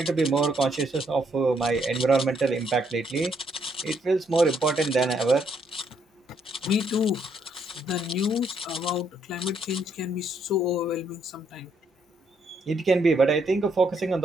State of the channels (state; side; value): normal; both; correlation 0.72